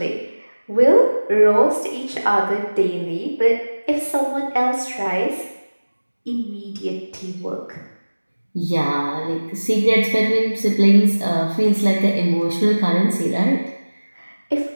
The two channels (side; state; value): both; inverted; correlation -1.00